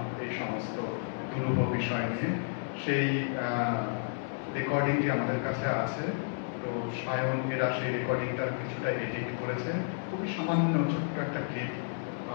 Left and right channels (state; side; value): silent; right; digital silence